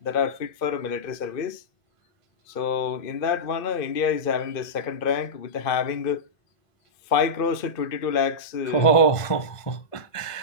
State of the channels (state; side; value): late; right; 2.5 ms